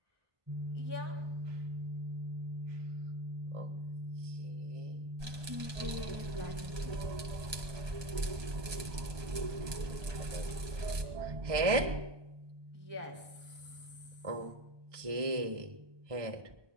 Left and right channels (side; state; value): left; late; 1.2 ms